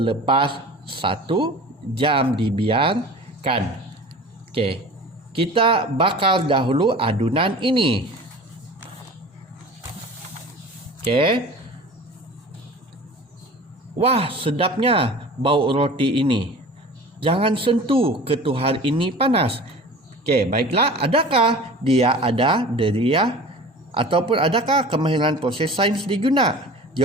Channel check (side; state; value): both; normal; correlation 0.39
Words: 1 jam dibiarkan. Okey, kita bakar dahulu adunan ini. Okey. Wah, sedapnya bau roti ini. Jangan sentuh, ketuhar ini panas. Okey, baiklah, adakah dia ada deria ataupun adakah kemahiran proses sains digunakan?